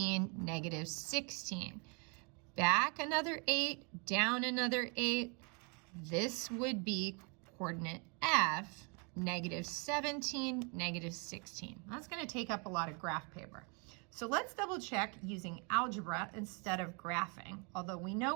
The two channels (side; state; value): left; quieter; 34.5 dB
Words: -16. Back another 8, down another 8. This would be coordinate F, -17, -16. That's going to take up a lot of graph paper. So let's double check using algebra instead of graphing, although we know